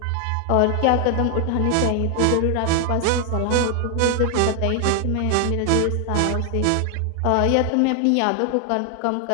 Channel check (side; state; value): both; different; correlation 0.00